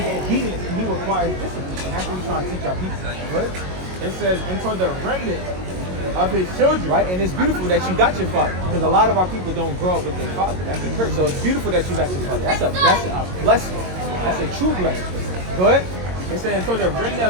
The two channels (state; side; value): late; left; 22 ms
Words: obedience and he requires discipline. And that's what we're trying to teach our people. Right? It says, and toward the remnant of his children. Right? And it's beautiful that you got your father. Because a lot of our people don't grow up with their father. That's a curse. So it's beautiful that you got your father. That's a blessing. That's a true blessing. Go ahead. It said, so the remnant